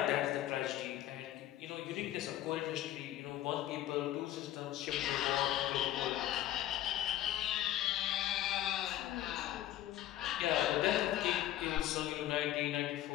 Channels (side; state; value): right; quieter; 13.4 dB